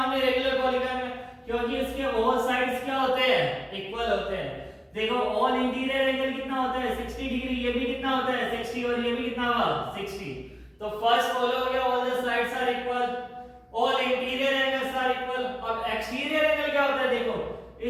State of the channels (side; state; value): both; identical; correlation 1.00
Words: रेगुलर पॉलीगन में, क्योंकि उसके ऑल साइड्स क्या होते हैं इक्वल होते हैं। देखो ऑल इंटीरियर एंगल कितना होता है 60 डिग्री, ये भी कितना होता है 60, और ये भी कितना हुआ 60। तो फर्स्ट फॉलो हो गया, all the sides are equal, all interior angles are equal. अब एक्सटीरियर एंगल क्या होता है देखो,